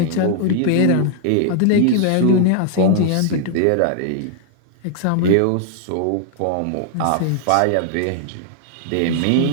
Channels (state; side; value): different; both; correlation 0.00